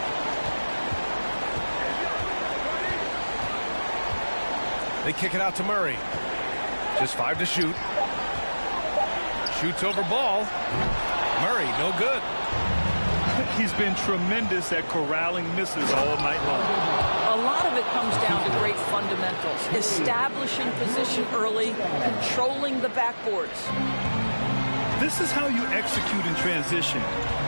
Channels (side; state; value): both; inverted; correlation -1.00